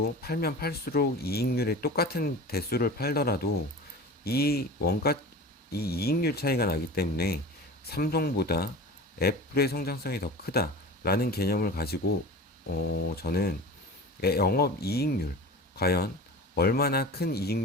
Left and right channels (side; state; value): both; normal; correlation 0.35